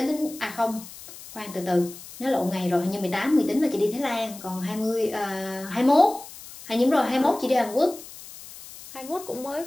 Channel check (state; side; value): noise; left; hiss, 16 dB below the sound